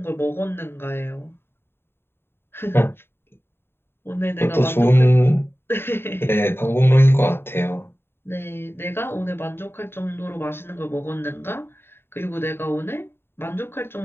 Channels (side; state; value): right; late; 0.11 ms